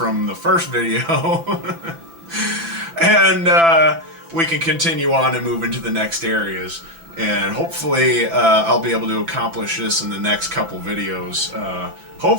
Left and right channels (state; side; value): late; left; 6.0 ms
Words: the first video, and we can continue on and move into the next areas. And hopefully I'll be able to accomplish this in the next couple videos.